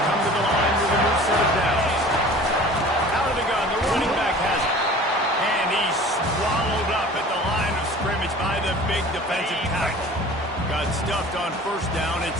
to the line with a new set of downs. Out of the gun, the running back has it. And he's swallowed up at the line of scrimmage by the big defensive tackle. Got stuffed on first down. It's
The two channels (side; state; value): both; normal; correlation 0.44